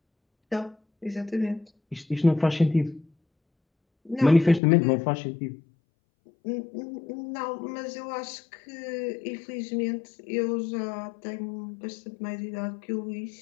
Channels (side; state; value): right; drops out; at 4.6 s